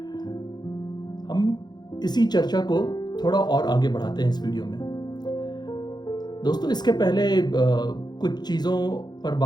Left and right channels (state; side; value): late; right; 0.20 ms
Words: हम इसी चर्चा को थोड़ा और आगे बढ़ाते हैं इस वीडियो में। दोस्तों, इसके पहले कुछ चीज़ों पर